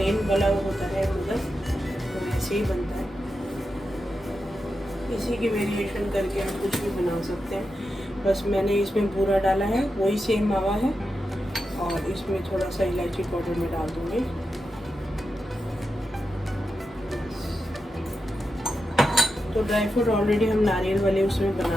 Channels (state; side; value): normal; both; correlation 0.89